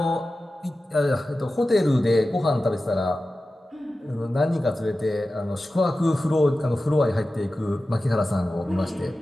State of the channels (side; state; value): both; normal; correlation 0.94